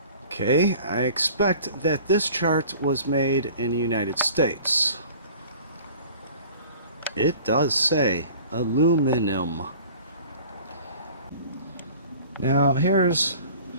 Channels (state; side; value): inverted; both; correlation -0.46